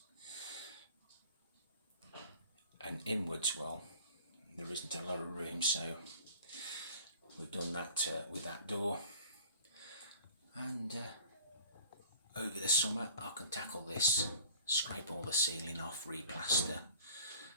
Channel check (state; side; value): inverted; both; correlation -0.47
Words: and inwards, well, there isn't a lot of room, so we've done that with that door. And over the summer I can tackle this, scrape all the ceiling off, replaster,